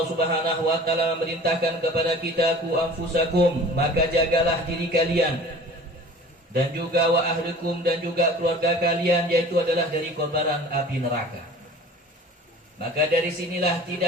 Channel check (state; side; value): normal; both; correlation 0.44